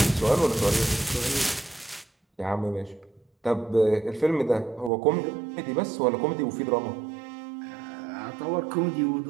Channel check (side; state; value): left; drops out; at 4.9 s